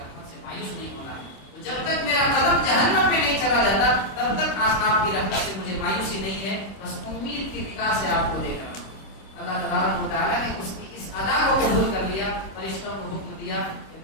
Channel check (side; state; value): right; late; 26 ms